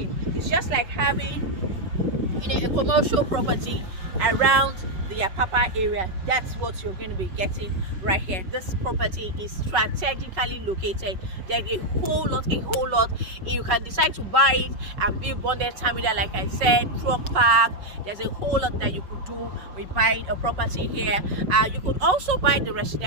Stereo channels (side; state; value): left; late; 5.4 ms